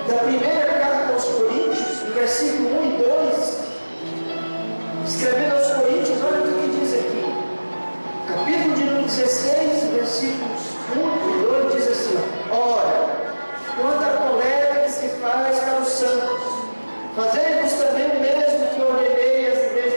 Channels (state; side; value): inverted; both; correlation -1.00